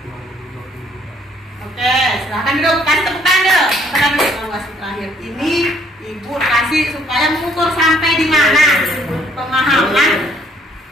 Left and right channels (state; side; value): normal; both; correlation 0.64